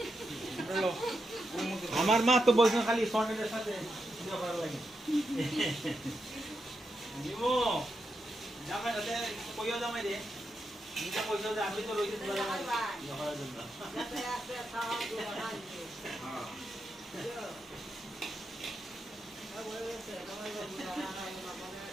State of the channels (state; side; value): normal; both; correlation 0.85